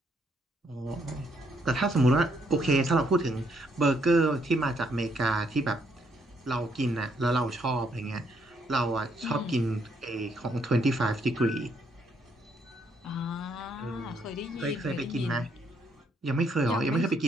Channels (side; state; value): both; normal; correlation 0.72